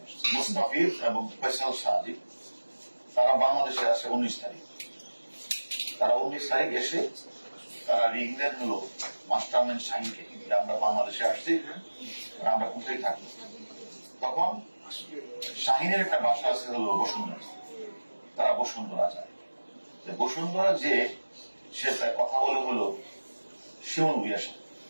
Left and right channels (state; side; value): inverted; both; correlation -1.00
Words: এসেছে মুস্তাফিজ এবং ফয়সাল সাদি। তারা বাংলাদেশে আসে 19 তারিখ। তারা 19 তারিখ এসে তারা রিং দেন হলো মাস্টারম্যান শাহিনকে, আমরা বাংলাদেশে আসছি, আমরা কোথায় থাকি। তখন শাহিনের একটা বাসা আছে হলো বসুন্ধরা। তারা বসুন্ধরা যায়। বসুন্ধরা যে সে কথা বলে হলো শিমুল ভুঁইয়ার সাথে।